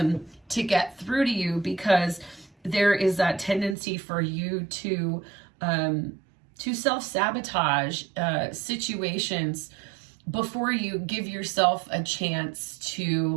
get through to you, because there is that tendency for you to self-sabotage situations before you give yourself a chance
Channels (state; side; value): drops out; left; at 3.8 s